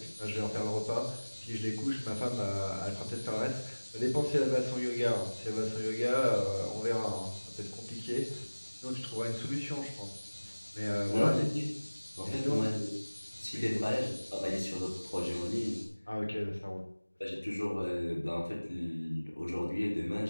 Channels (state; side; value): inverted; both; correlation -1.00